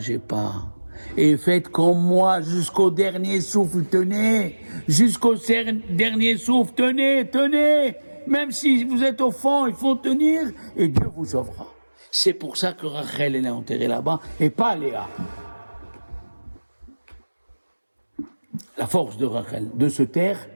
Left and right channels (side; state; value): both; inverted; correlation -1.00